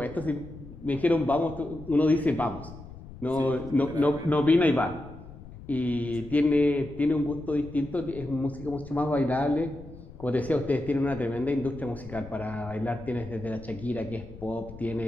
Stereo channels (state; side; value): noise; left; rumble, 16 dB below the sound